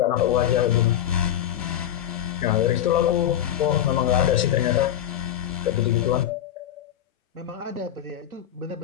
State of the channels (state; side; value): quieter; right; 11.0 dB